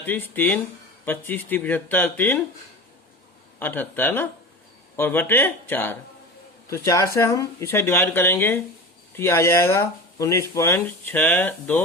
3 25 30 75, 3 78 है ना, और बटे 4। तो 4 से हम इसे डिवाइड करेंगे तो ये आ जाएगा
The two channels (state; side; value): normal; both; correlation 0.30